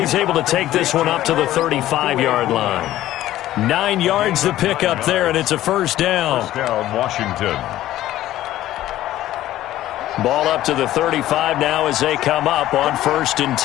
able to take this one up to the 35-yard line. 9 yards to pick up there, and it's a first down. First down, Washington. Ball up to the 35 now as they come up on 1st and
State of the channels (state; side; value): quieter; right; 14.1 dB